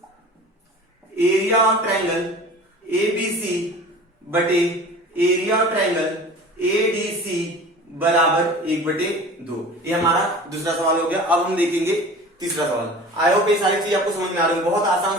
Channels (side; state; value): both; normal; correlation 0.40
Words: एरिया ऑफ ट्रायंगल एबीसी बटे एरिया ऑफ ट्रायंगल एडीसी बराबर 1/2। ये हमारा दूसरा सवाल हो गया। अब हम देखेंगे तीसरा सवाल। आई होप ये सारी चीज आपको समझ में आ रही है, बहुत आसान